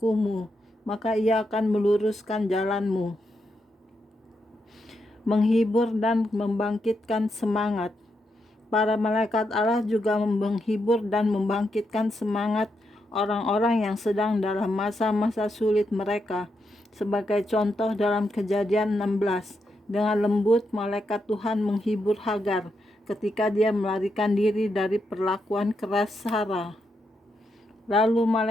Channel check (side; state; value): both; normal; correlation 0.82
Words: maka Ia akan meluruskan jalanmu." Menghibur dan membangkitkan semangat. Para malaikat Allah juga menghibur dan membangkitkan semangat orang-orang yang sedang dalam masa-masa sulit mereka. Sebagai contoh dalam Kejadian 16, dengan lembut malaikat Tuhan menghibur Hagar ketika dia melarikan diri dari perlakuan keras Sarah. Lalu